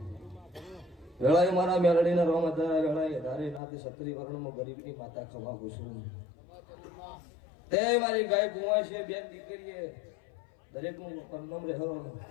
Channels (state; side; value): drops out; right; at 3.6 s